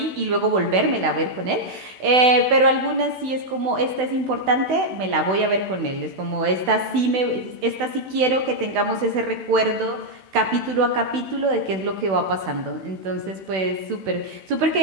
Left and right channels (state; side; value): late; left; 16 ms